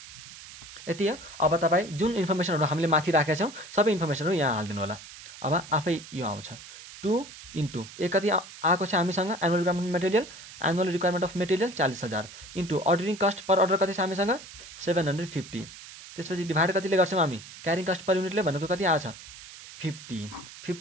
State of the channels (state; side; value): noise; right; hiss, 16 dB below the sound